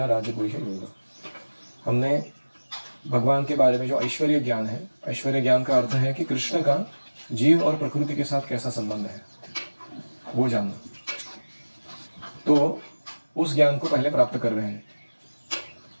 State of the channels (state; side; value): inverted; both; correlation -1.00